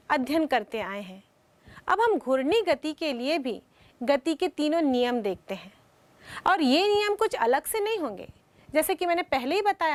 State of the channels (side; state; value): both; identical; correlation 1.00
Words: अध्ययन करते आए हैं, अब हम घूर्णी गति के लिए भी गति के तीनों नियम देखते हैं। और ये नियम कुछ अलग से नहीं होंगे, जैसे कि मैंने पहले ही